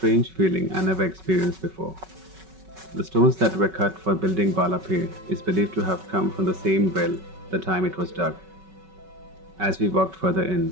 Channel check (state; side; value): late; left; 5.3 ms